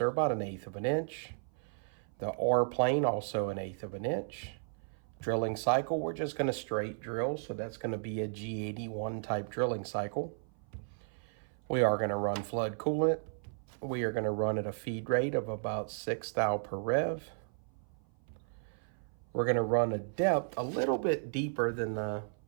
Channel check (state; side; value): silent; left; 55 dB below the other